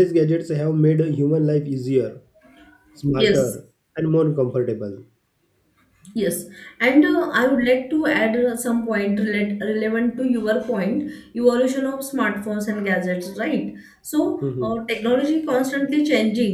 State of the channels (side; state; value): both; identical; correlation 1.00